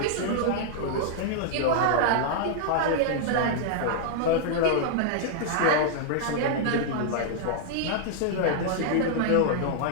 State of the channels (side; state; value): both; different; correlation -0.01